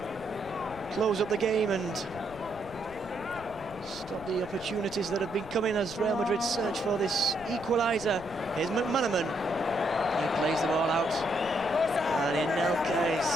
close up the game and stop the opportunities that have been coming as Real Madrid search for this equaliser. Here's McManaman. He plays the ball out, and Anelka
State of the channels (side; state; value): left; noise; rumble, 18 dB below the sound